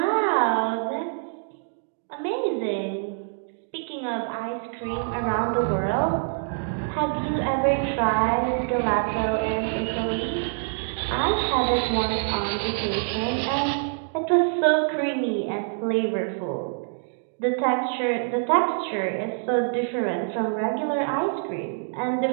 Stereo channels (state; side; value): silent; left; digital silence